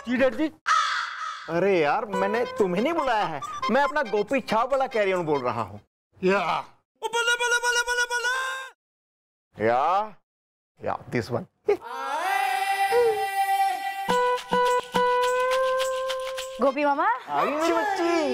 जी डर जी। अरे यार, मैंने तुम्हें नहीं बुलाया है, मैं अपना गोपी छाप वाला कैरी ऑन बोल रहा हूँ। या दिस वन। गोपी मामा आ गई मेरी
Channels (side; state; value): both; identical; correlation 1.00